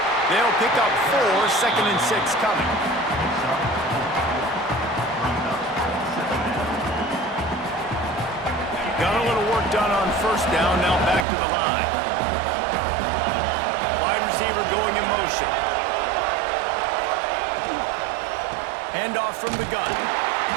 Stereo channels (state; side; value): drops out; left; at 11.2 s